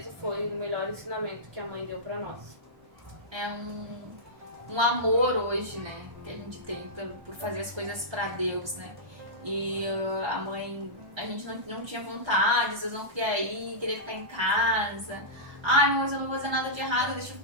foi o melhor ensinamento que a mãe deu para nós. É um amor hoje, né? que a gente tem por fazer as coisas pra Deus, né? E a mãe, a gente não tinha vontade, às vezes não queria ir, queria ficar em casa. Ai, mas eu não vou fazer nada de errado, deixa eu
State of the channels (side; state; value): left; late; 1.3 ms